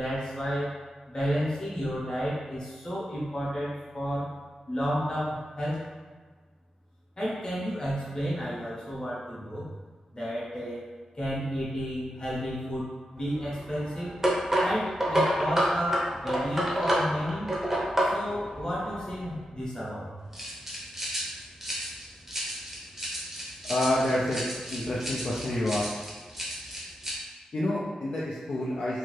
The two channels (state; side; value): normal; both; correlation 0.87